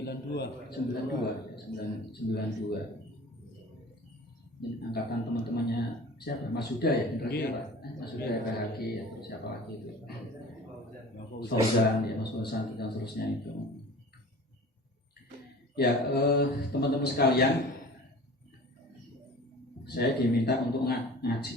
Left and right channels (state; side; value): normal; both; correlation 0.41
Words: ini angkatan teman-temannya siapa, Mas Huda ya, generasi apa, Mas Huda ya, PHG atau siapa lagi itu, Fauzan ya, Mas Fauzan dan seterusnya itu ya. Teman-teman sekalian, saya diminta untuk